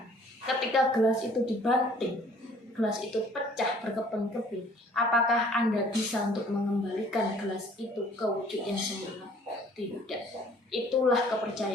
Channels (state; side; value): normal; both; correlation 0.55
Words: Ketika gelas itu dibanting, gelas itu pecah berkeping-keping, apakah Anda bisa untuk mengembalikan gelas itu ke wujud yang semula? Tidak. Itulah